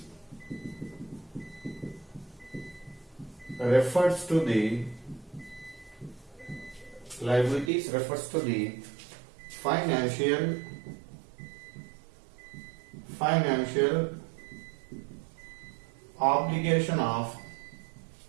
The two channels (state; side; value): drops out; left; at 7.7 s